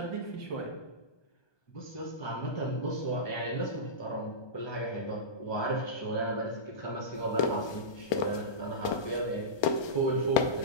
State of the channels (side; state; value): right; late; 1.2 ms